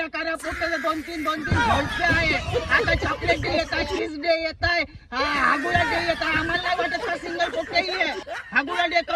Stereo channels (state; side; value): identical; both; correlation 1.00